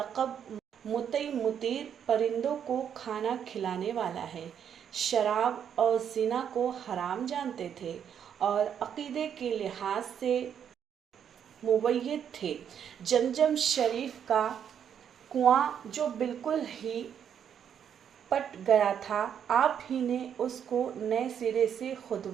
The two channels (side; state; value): left; quieter; 8.5 dB